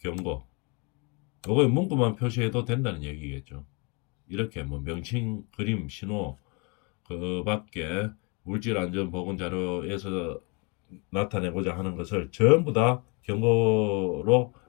요거에 문구만 표시해도 된다는 얘기겠죠. 이렇게 뭐 명칭, 그림, 신호 그 밖에 물질 안전 보건 자료에서 나타내고자 하는 것을 전부 다 경고로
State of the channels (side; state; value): right; quieter; 32.1 dB